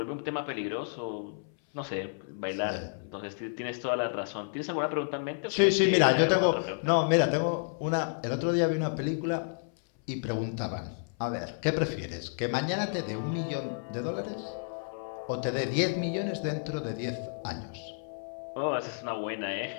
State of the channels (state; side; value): silent; right; 57 dB below the other